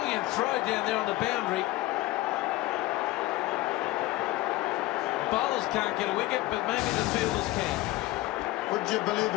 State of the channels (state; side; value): quieter; right; 17.9 dB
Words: throw down there on the boundary. Bowlers can't get a wicket, but maybe the fielders can. Would you believe